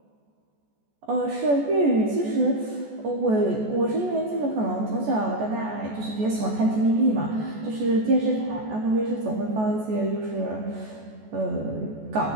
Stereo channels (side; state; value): left; late; 14 ms